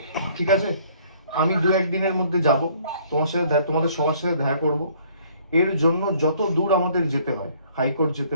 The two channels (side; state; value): both; inverted; correlation -0.60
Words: ঠিক আছে? আমি 2-1 দিনের মধ্যে যাব, তোমাদের সবার সাথে দেখা করব। এর জন্য যত দূর আমাদের যেতে হয়, হাইকোর্ট যেতে